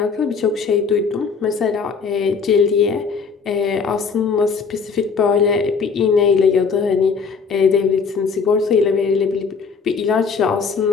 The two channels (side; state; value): right; quieter; 5.4 dB